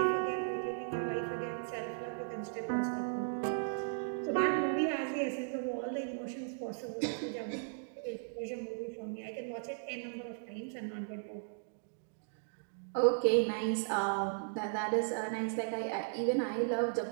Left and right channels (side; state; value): left; silent; digital silence